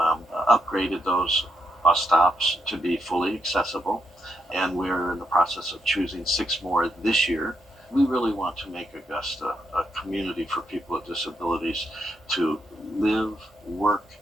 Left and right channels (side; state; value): both; normal; correlation 0.79